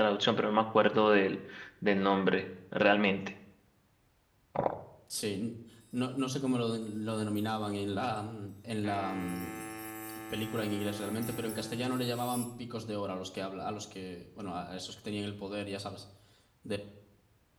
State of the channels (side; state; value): both; identical; correlation 1.00